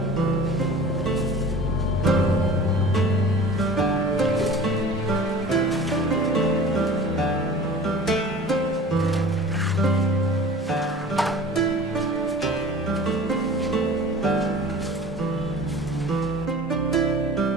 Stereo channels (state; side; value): normal; both; correlation 0.42